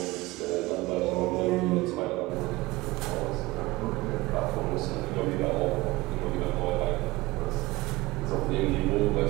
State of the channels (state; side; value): quieter; left; 20.4 dB